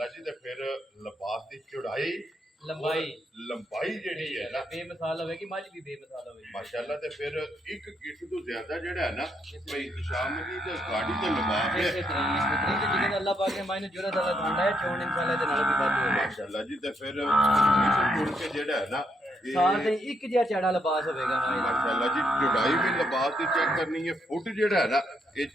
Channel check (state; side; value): normal; both; correlation 0.76